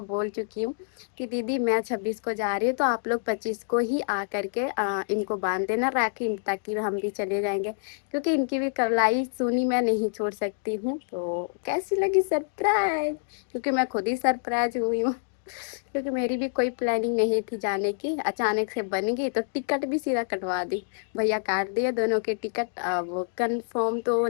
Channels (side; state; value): right; silent; digital silence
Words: बोल चुकी हूँ कि दीदी मैं 26 को जा रही हूँ, तो आप लोग 25 को ही आ करके इनको बांध देना राखी, ताकि हम भी चले जाएंगे, क्योंकि इनकी भी कलाई सुनी मैं नहीं छोड़ सकती हूँ। तो कैसी लगी सरप्राइज, क्योंकि मैं खुद ही सरप्राइज हुई हूँ। क्योंकि मेरी भी कोई प्लानिंग नहीं थी जाने की, अचानक से बन गई, तो टिकट भी सीधा कटवा दी। भैया काट दिए दोनों के टिकट। वो कंफर्म तो